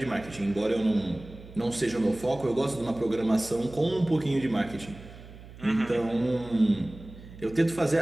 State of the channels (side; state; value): right; noise; hum, 17 dB below the sound